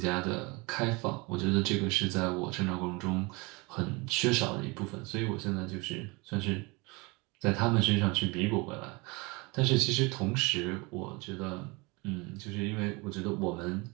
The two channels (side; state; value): left; quieter; 26.6 dB